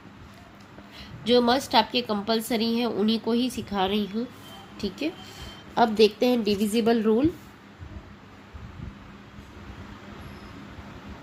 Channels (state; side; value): identical; both; correlation 1.00